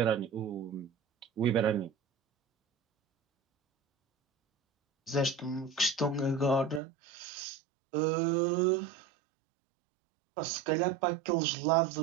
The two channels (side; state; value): left; drops out; at 6.8 s